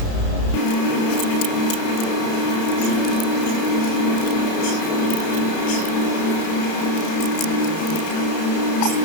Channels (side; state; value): right; late; 32 ms